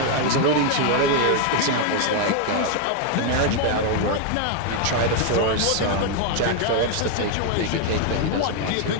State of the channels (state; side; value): different; both; correlation 0.01